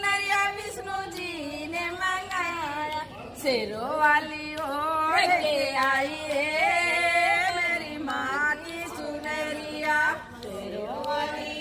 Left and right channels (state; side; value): identical; both; correlation 1.00